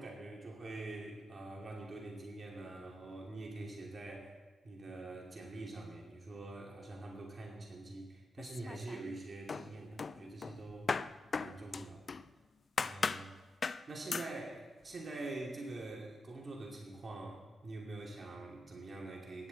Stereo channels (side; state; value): both; normal; correlation 0.87